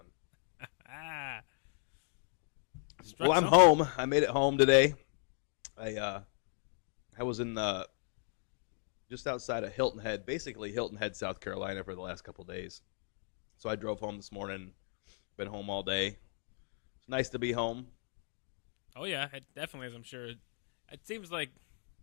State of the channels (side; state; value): right; silent; 54 dB below the other